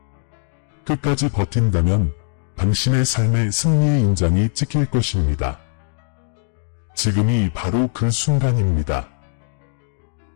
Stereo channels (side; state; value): right; silent; digital silence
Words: 끝까지 버틴다면 당신의 삶의 승리의 인장이 찍힐 것입니다. 지금이 바로 그 순간입니다.